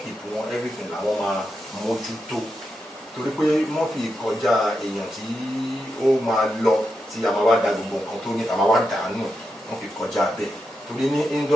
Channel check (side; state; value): both; normal; correlation 0.87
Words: wọn, everything làwọn máa mójútó. Torí pé Muffy kọjá èèyàn tí ó máa lọ tí a máa wá da gbogbo nǹkan tó ní a máa wá dànù, wọ́n fi kọjá bẹ́ẹ̀. Torí ní